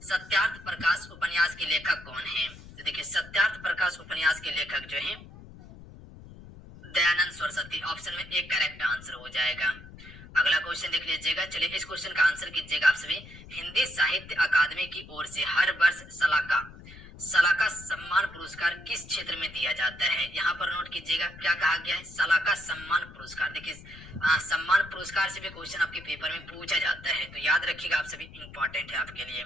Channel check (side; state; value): left; noise; rumble, 17 dB below the sound